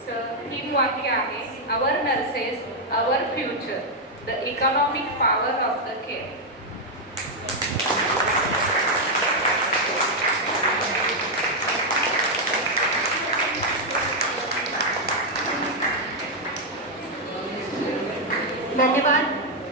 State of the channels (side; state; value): both; normal; correlation 0.00